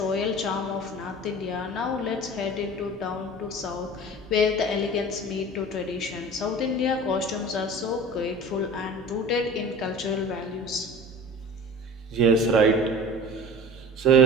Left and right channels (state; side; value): normal; both; correlation 0.37